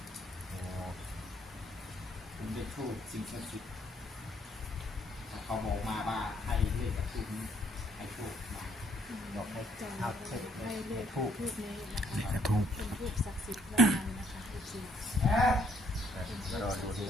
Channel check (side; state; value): both; normal; correlation 0.68